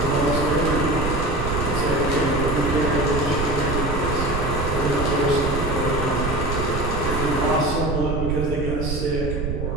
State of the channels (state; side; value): noise; right; rumble, 3 dB below the sound